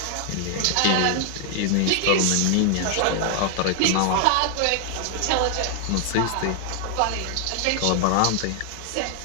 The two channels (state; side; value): different; both; correlation 0.00